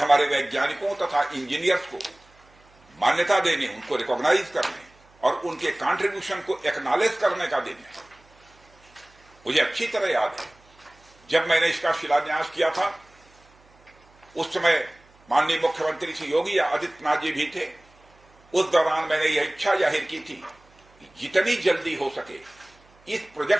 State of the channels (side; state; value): right; noise; hum, 30 dB below the sound